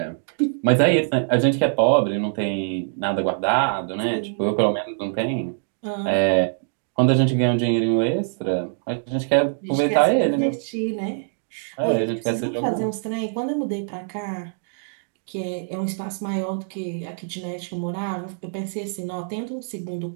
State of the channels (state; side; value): silent; left; digital silence